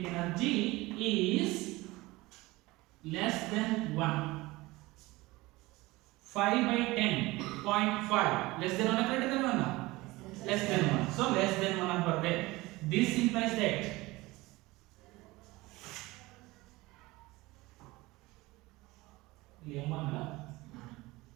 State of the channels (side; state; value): left; quieter; 20.8 dB